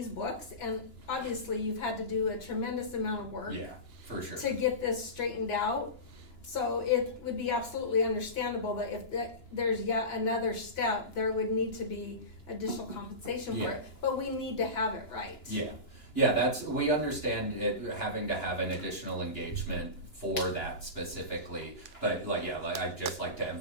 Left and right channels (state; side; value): late; right; 2.9 ms